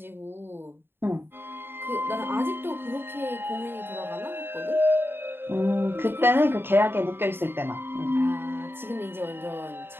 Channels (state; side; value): late; left; 0.11 ms